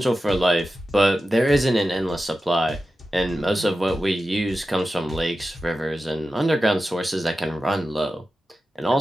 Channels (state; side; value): normal; both; correlation 0.93